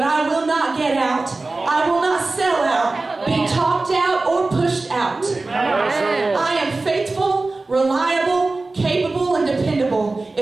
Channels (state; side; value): quieter; left; 3.4 dB